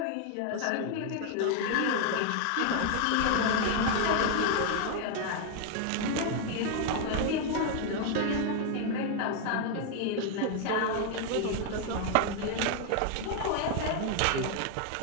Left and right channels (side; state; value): both; different; correlation 0.00